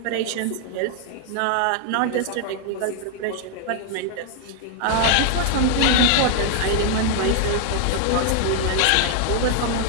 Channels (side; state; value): both; different; correlation 0.00